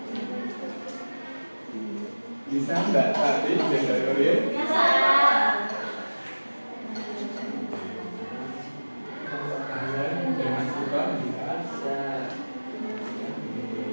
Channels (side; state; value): both; inverted; correlation -1.00